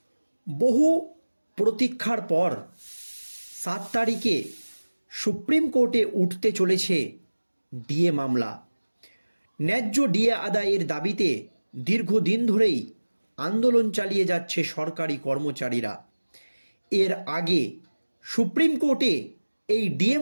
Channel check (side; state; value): both; inverted; correlation -1.00